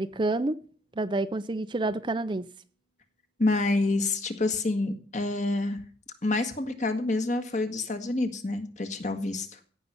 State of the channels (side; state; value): both; normal; correlation 0.68